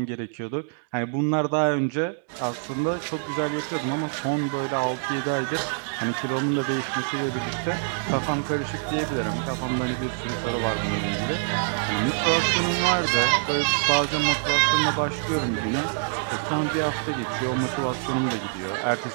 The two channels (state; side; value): silent; left; digital silence